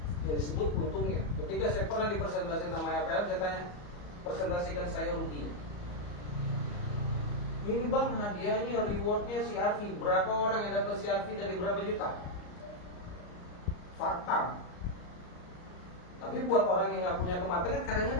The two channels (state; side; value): late; right; 34 ms